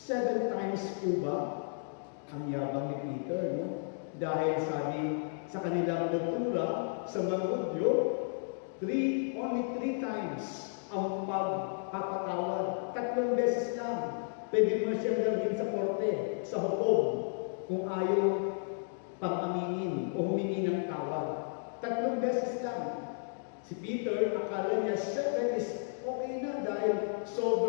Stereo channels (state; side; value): silent; right; digital silence